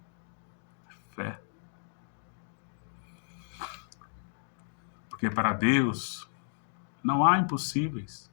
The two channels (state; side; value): silent; right; digital silence